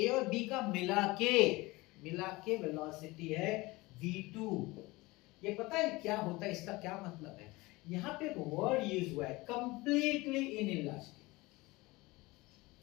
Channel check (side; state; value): right; quieter; 21.9 dB